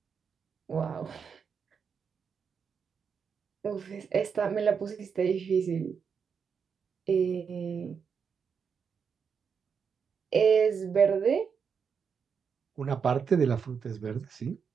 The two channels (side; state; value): left; quieter; 6.4 dB